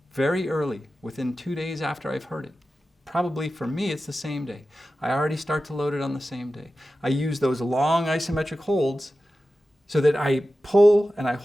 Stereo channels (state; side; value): normal; both; correlation 0.94